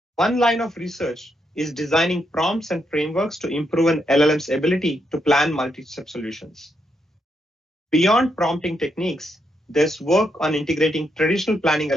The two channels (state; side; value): normal; both; correlation 0.80